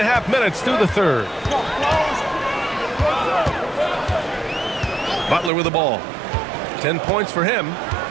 minutes through the third. Butler with the ball. 10 points for him.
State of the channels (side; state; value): left; drops out; at 5.5 s